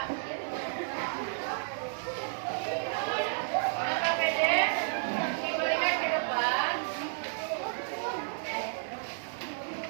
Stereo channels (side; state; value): left; silent; digital silence